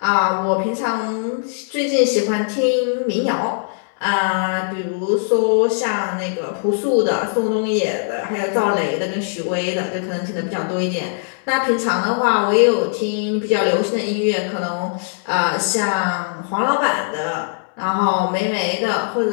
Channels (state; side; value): silent; right; digital silence